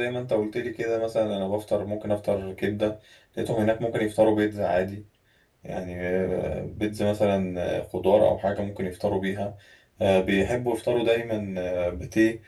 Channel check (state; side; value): identical; both; correlation 1.00